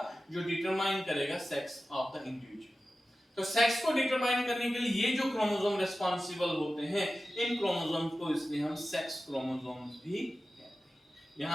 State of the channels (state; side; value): normal; both; correlation 0.94